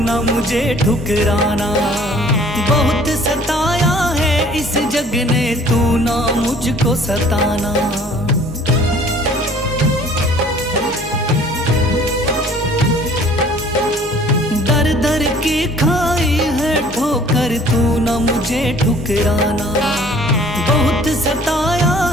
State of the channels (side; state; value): both; normal; correlation 0.53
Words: मुझे ठुकराना। बहुत सताया है इस जग ने तू ना मुझको सताना। दर दर की खाई है ठोकर तू ना मुझे ठुकराना। बहुत सताया